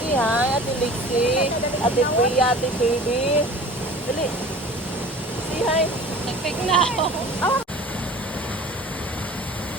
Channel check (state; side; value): normal; both; correlation 0.42